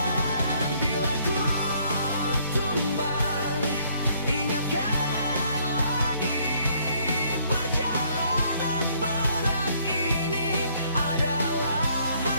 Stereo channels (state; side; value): inverted; both; correlation -0.65